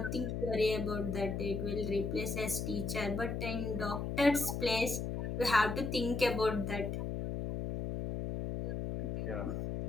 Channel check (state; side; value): noise; left; hum, 3 dB below the sound